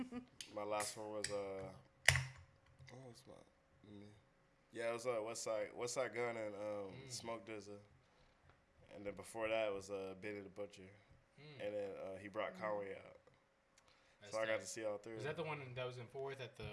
my last one was yeah, it was Westside Gun and Smoke DZA, and then before that was Benny the Butcher, and then he brought Conway out. So I got to see all three. Is that the one that was in Fort Worth at the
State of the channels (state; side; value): identical; both; correlation 1.00